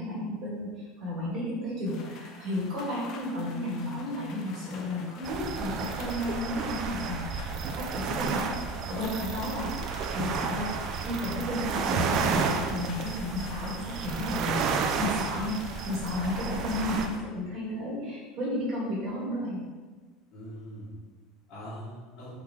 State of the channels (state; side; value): normal; both; correlation 0.31